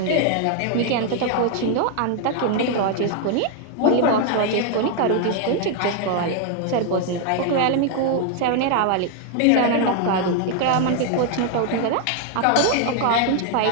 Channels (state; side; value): different; both; correlation 0.00